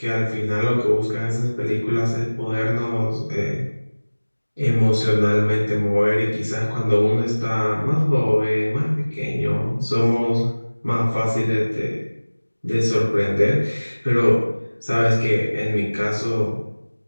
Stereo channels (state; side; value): inverted; both; correlation -1.00